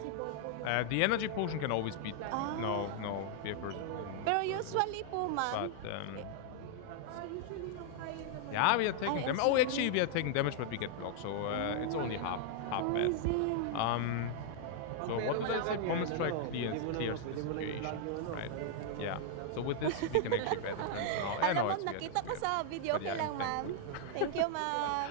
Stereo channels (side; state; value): both; different; correlation 0.00